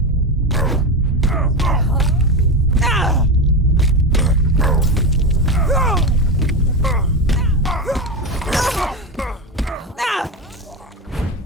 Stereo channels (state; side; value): normal; both; correlation 0.17